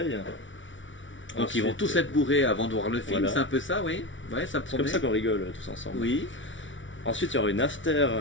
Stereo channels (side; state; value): right; late; 0.56 ms